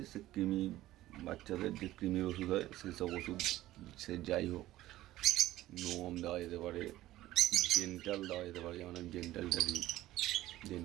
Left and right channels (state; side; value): quieter; left; 15.5 dB